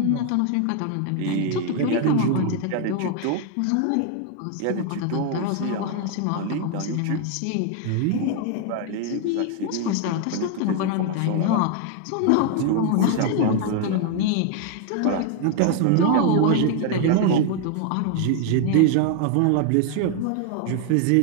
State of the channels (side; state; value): both; different; correlation 0.00